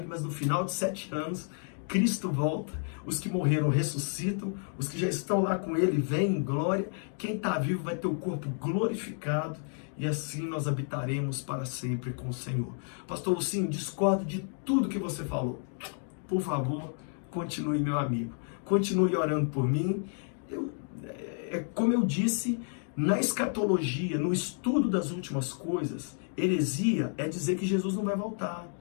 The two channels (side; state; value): right; silent; 55 dB below the other